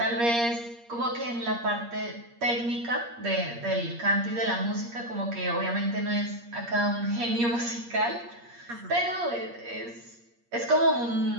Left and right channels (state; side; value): late; left; 8.5 ms